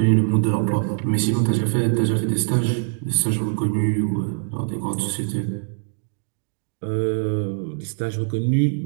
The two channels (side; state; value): left; silent; digital silence